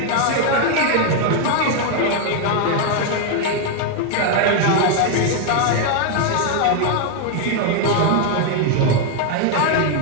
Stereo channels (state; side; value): different; both; correlation 0.01